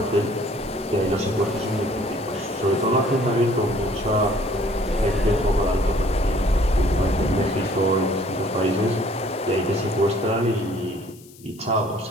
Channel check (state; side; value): noise; left; hiss, 24 dB below the sound